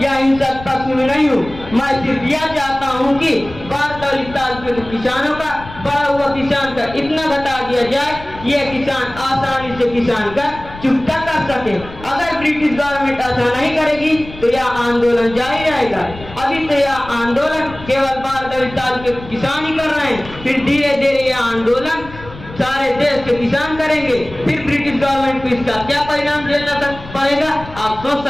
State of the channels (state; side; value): noise; left; rumble, 16 dB below the sound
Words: या हिंसक पक्ष में नहीं हूँ। मैं सिर्फ यह चाहता हूँ कि बारदाली तालुके के किसानों का बड़ा हुआ किसान का इतना घटा दिया जाए कि यह किसान आसानी से किसान का चुकता कर सके। अगर ब्रिटिश गवर्नमेंट ऐसा नहीं करेगी तो यह आंदोलन जारी रहेगा। अभी तो यह आंदोलन केवल बारदाली तालुके के किसान ही कर रहे हैं, फिर धीरे धीरे यह आंदोलन सारे देश के किसान करेंगे। फिर ब्रिटिश गवर्नमेंट को इसका क्या परिणाम झेलना पड़ेगा आप सोच